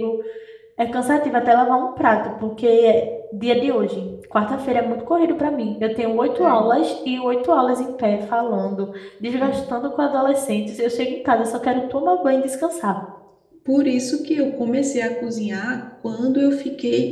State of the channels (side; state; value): both; identical; correlation 1.00